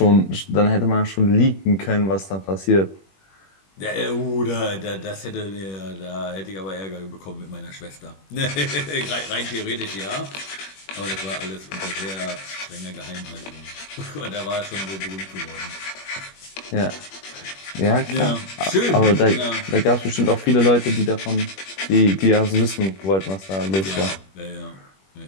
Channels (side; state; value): right; late; 21 ms